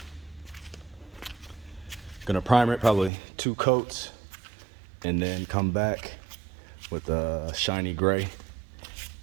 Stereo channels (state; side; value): drops out; left; at 3.1 s